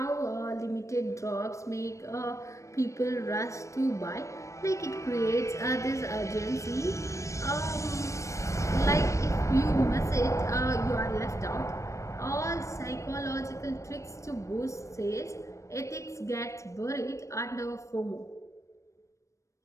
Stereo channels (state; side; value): late; right; 0.15 ms